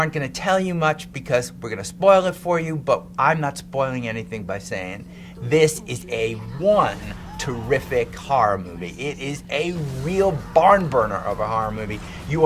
going to tell you much because we're going to spoil it for you, but I'm not spoiling anything by saying this is a terrific horror movie. It is a real barn burner of a horror movie. You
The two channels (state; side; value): identical; both; correlation 1.00